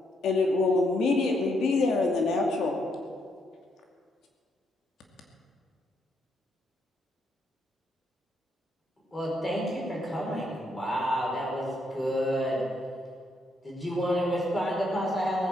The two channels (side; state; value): both; normal; correlation 0.76